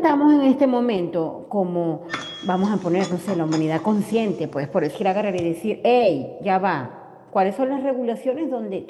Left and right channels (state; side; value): identical; both; correlation 1.00